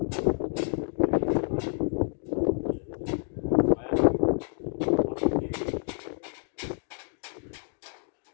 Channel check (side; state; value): right; silent; 55 dB below the other